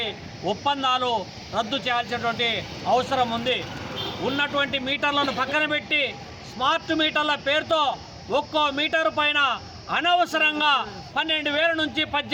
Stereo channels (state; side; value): identical; both; correlation 1.00